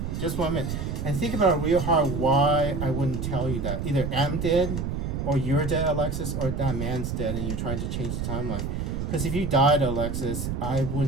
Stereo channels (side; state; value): right; noise; rumble, 3 dB below the sound